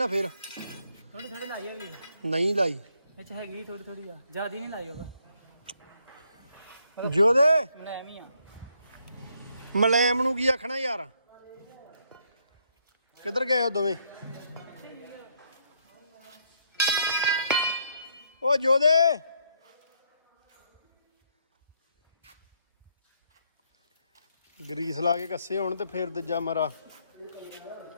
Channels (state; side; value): inverted; both; correlation -0.73